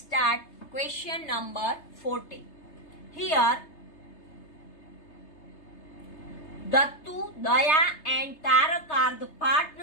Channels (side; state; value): right; late; 3.3 ms